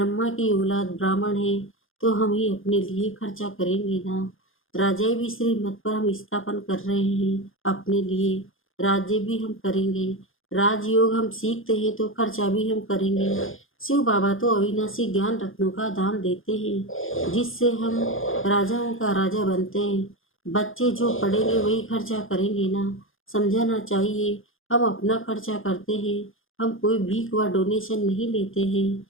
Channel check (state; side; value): late; right; 0.59 ms